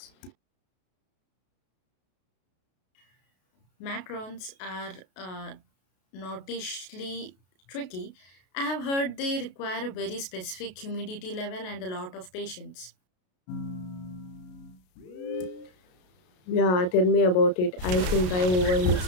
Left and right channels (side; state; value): right; late; 33 ms